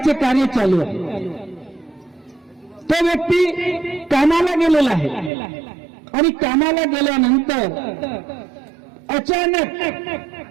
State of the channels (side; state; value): left; drops out; at 5.3 s